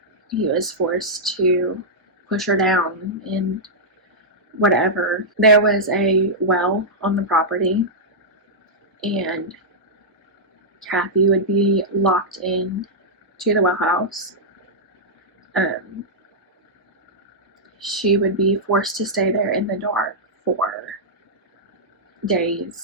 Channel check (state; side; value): normal; both; correlation -0.09